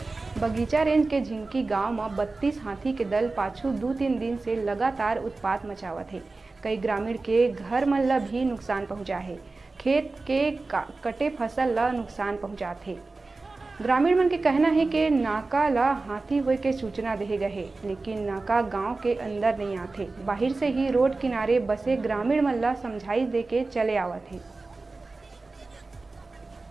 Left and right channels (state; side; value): quieter; left; 3.6 dB